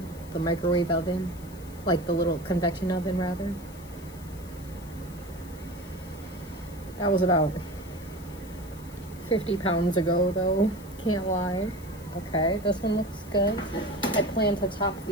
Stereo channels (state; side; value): noise; left; hiss, 21 dB below the sound